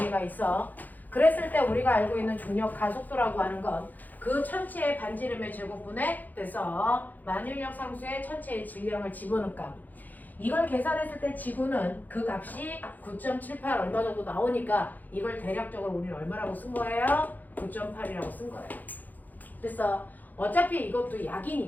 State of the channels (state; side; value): late; right; 0.083 ms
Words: 있어. 그랬을 때 우리가 알고 있는 중력 가속도라고 하는 건 그 천체의 반지름의 제곱분에 돼서 만유인력 상수의 천체의 질량을 집어넣은 값. 이걸 계산했을 때 지구는 그 값이 9.78 얼마 정도 나오니까 이걸 대략적으로 우리는 얼마라고 쓴 거예요? 9.8이라고 쓴 거예요. 그래서 어차피 이것도